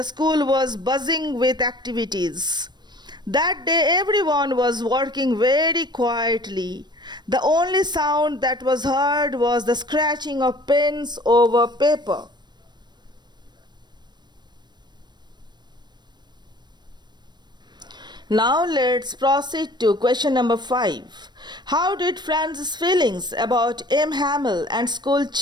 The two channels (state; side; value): late; left; 0.21 ms